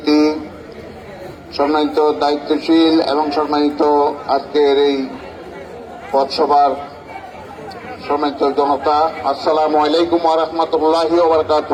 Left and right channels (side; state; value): both; identical; correlation 1.00